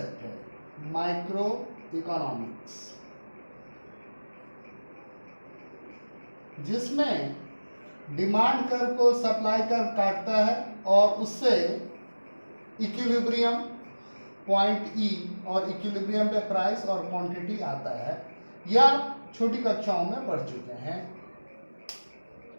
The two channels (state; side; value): inverted; both; correlation -1.00